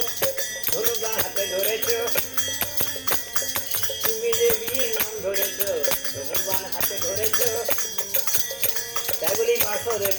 ধনুবা হাতে ধরেছ, তুমি যে বিয়ের নাম ধরেছ, ধনুবান হাতে ধরেছ। তাই বলি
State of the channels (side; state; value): left; noise; rumble, 27 dB below the sound